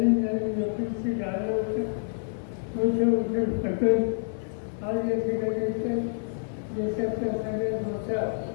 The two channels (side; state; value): right; silent; 57 dB below the other